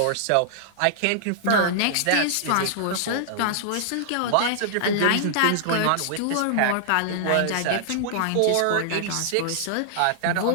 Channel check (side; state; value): both; different; correlation -0.01